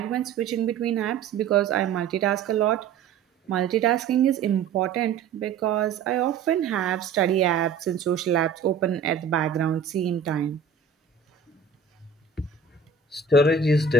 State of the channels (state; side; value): quieter; left; 5.9 dB